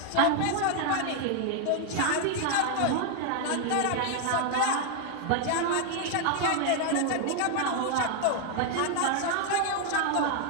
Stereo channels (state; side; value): different; both; correlation 0.00